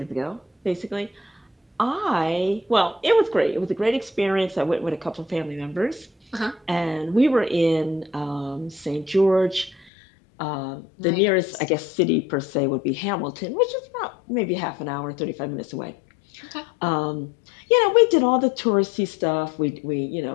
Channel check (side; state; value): right; drops out; at 9.9 s